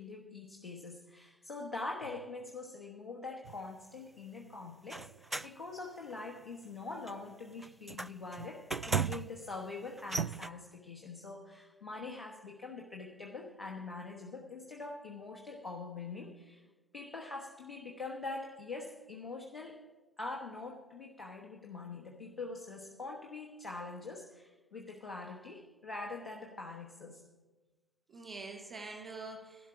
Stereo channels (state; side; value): normal; both; correlation 0.43